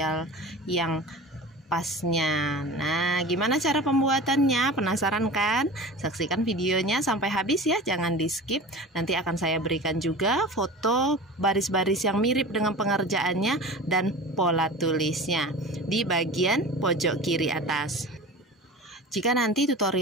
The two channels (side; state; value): both; normal; correlation 0.35